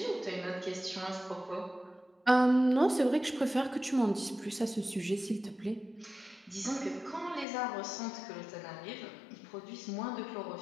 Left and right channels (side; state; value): right; drops out; at 7.5 s